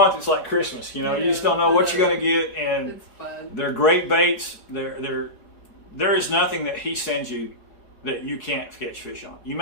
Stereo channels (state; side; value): late; right; 4.7 ms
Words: it's like Christmas. You know, you just don't know what you're going to get. And it's fun. They're great baits. There is nothing that he sends you that you can't catch fish on. You